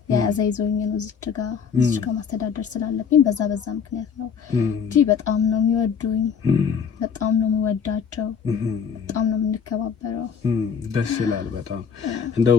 ያዛ ይዞኝ ነው እዚህ ጋር ማስተዳደር ስላለብኝ በዛ ምክንያት ነው እንጂ በጣም ነው የሚወዱኝ፣ በጣም ነው የምወዳቸው፣ በጣም ነው የምንከባበረው። ደስ ይላል በጣም።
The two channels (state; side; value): quieter; right; 6.7 dB